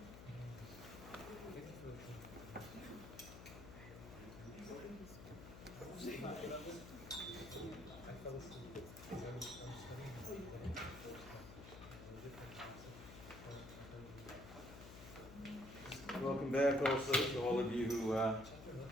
Welcome back also to all of you who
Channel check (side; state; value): left; noise; hum, 13 dB below the sound